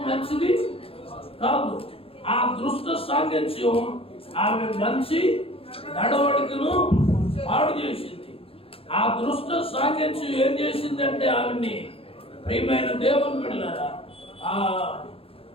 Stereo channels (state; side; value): late; right; 0.27 ms